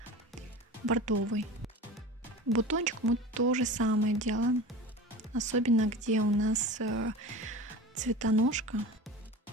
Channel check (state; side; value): normal; both; correlation 0.34